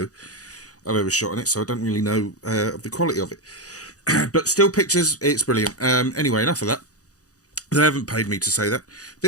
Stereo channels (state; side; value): late; right; 0.67 ms